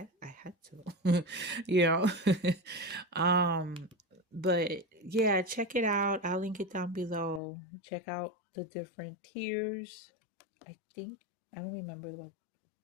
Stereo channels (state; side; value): drops out; right; at 7.4 s